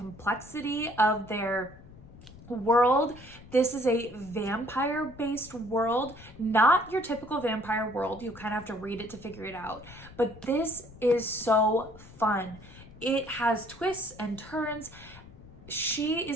of their world. This is a vampire-based world, not your typical vampire world. You kind of have to read it to figure it out. But this is so fun. It has twists and turns. She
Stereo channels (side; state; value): left; noise; rumble, 19 dB below the sound